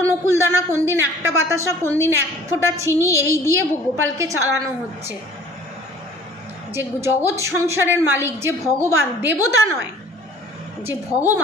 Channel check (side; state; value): both; normal; correlation 0.51